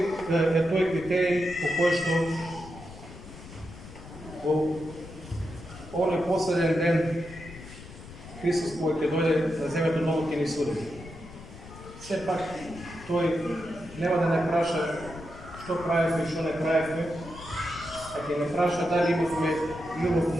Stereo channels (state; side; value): noise; left; rumble, 16 dB below the sound